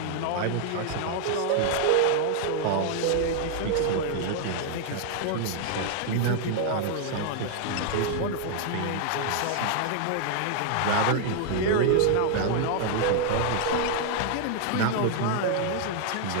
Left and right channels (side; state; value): both; different; correlation 0.00